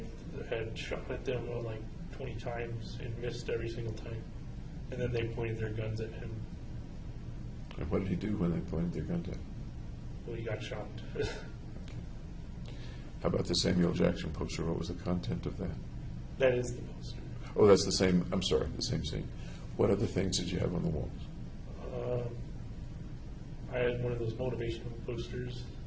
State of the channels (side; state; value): both; identical; correlation 1.00